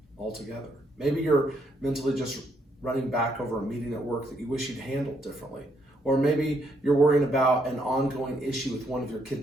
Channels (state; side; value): normal; both; correlation 0.73